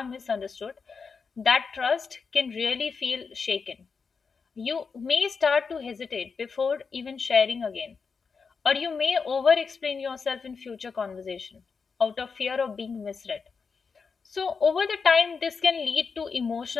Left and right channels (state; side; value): quieter; right; 5.3 dB